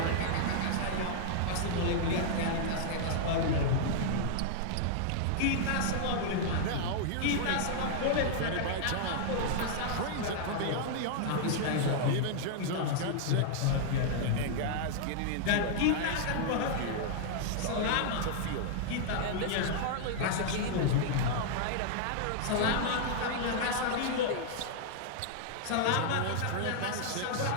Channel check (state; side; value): different; both; correlation -0.01